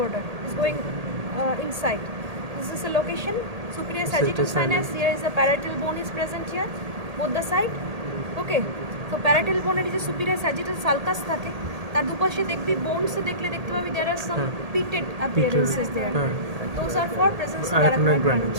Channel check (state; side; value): late; left; 1.8 ms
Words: is going inside. This is the location superior sagittal sinus. Here is the parietal bone is present here, both the side. Okay, so parietal bone এর যে superior sagittal sulcus থাকে, তার দুপাশে দেখবি bones এ দেখলে দেখতে পাবি there are some pitted appearances there. Those are for presence of arachnoid